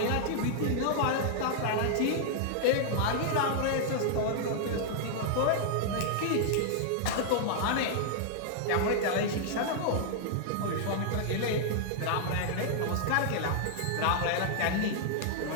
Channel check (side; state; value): both; different; correlation -0.01